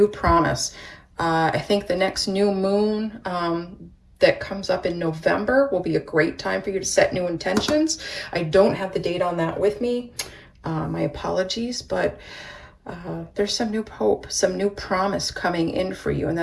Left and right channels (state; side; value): identical; both; correlation 1.00